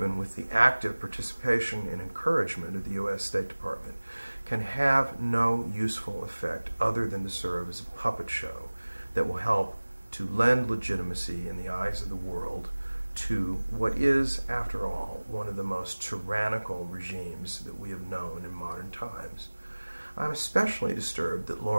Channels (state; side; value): inverted; both; correlation -1.00